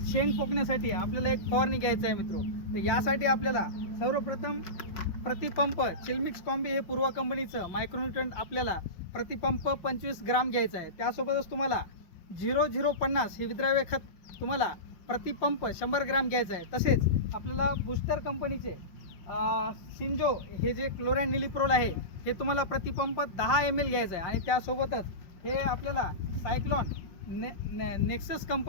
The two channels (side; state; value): right; late; 5.5 ms